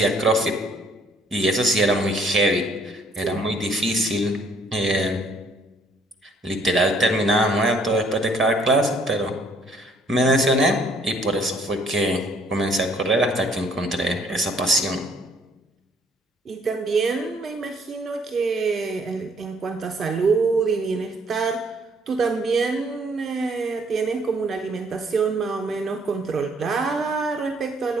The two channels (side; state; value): both; normal; correlation 0.63